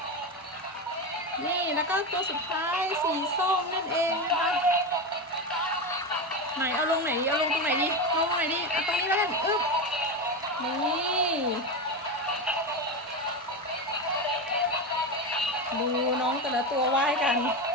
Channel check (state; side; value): normal; both; correlation 0.17